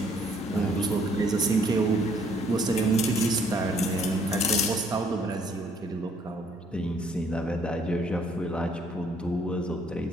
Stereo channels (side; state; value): both; normal; correlation 0.65